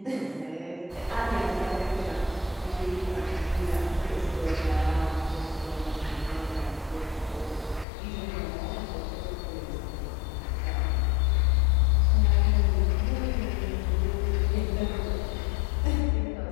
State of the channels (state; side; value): drops out; right; at 7.9 s